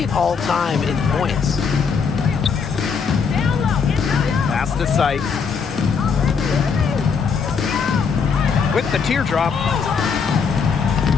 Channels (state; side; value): quieter; right; 5.8 dB